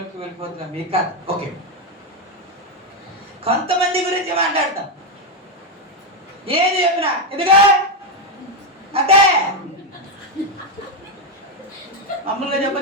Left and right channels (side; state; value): both; normal; correlation 0.05